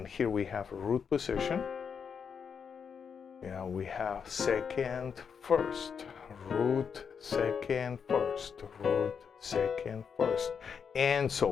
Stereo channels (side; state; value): right; quieter; 6.6 dB